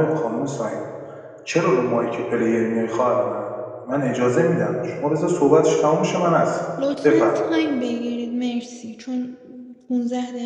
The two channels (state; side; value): identical; both; correlation 1.00